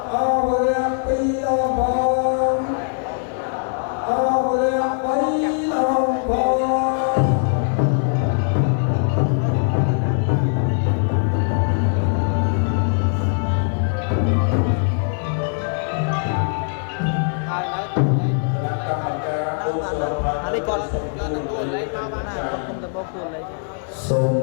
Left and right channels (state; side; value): silent; right; 58 dB below the other